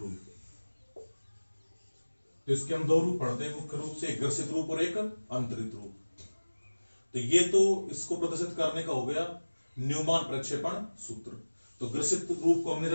तो इसके हम दो रूप पढ़ते हैं मुख्य रूप से, एक ग्रसित रूप और एक अंतरित रूप। तो ये तो इसको प्रदर्शित करने का हो गया न्यूमान प्रक्षेपण सूत्र। तो ग्रसित रूप को हमने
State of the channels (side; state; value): both; inverted; correlation -1.00